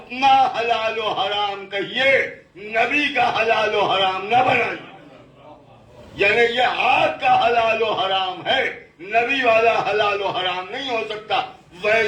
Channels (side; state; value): both; identical; correlation 1.00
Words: حلال و حرام کہیے، نبی کا حلال و حرام نہ بنائیے۔ یعنی یہ آپ کا حلال و حرام ہے، نبی والا حلال و حرام نہیں ہو سکتا۔